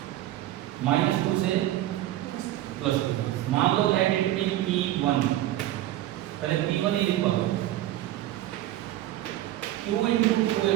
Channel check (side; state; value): left; quieter; 14.3 dB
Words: -2 से +2। मान लो लेट इट बी P1, पहले P1 ही लिखवा दो, Q इनटू 2a